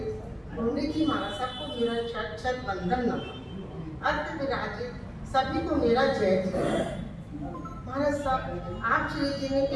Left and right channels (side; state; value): both; identical; correlation 1.00